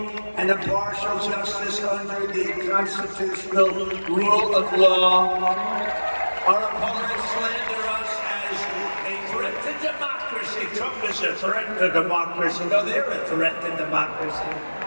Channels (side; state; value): both; inverted; correlation -1.00